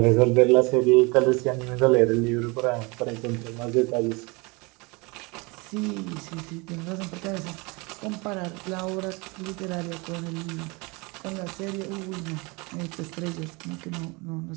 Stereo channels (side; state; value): left; quieter; 27.2 dB